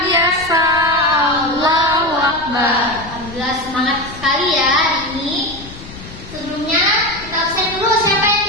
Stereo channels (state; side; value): noise; left; rumble, 16 dB below the sound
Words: biasa. Allahu Akbar. Alhamdulillah, semangat sekali ya hari ini. Sebelumnya kita absen dulu. Siapa yang